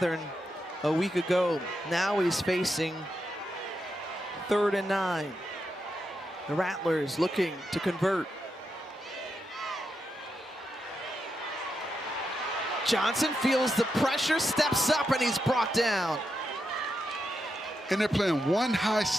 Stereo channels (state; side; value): normal; both; correlation 0.85